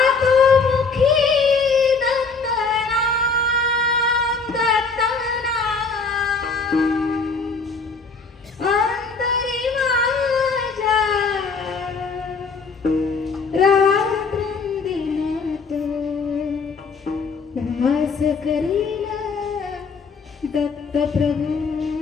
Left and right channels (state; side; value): quieter; right; 4.6 dB